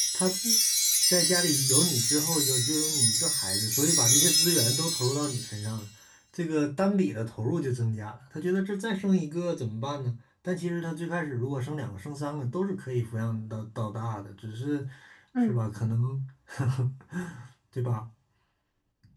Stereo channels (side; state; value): both; identical; correlation 1.00